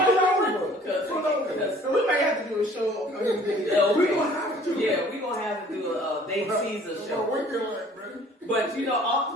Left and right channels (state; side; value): normal; both; correlation 0.53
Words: Because So we might have to do a show. We gonna have to. Yeah, we gonna have to do a Dave Caesar A show. winking light, man. But you